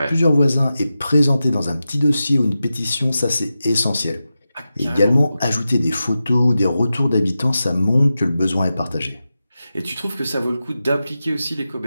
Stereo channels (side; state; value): both; inverted; correlation -0.92